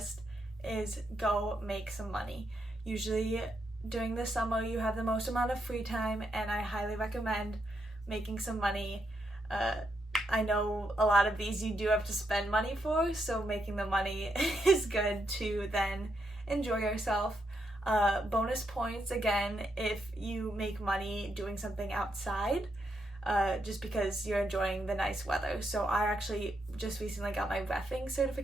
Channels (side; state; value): both; normal; correlation 0.80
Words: is go make some money. Usually during the summer you have the most amount of free time, and I highly recommend making some money. I know a lot of these you do have to spend money for, so making the money is good to then enjoy yourself. Bonus points again if you make money doing something outside, just because you're enjoying the nice weather. So I actually just recently got my reffing